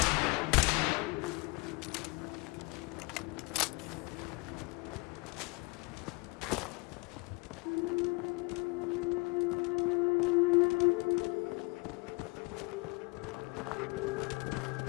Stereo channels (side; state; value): right; quieter; 26.9 dB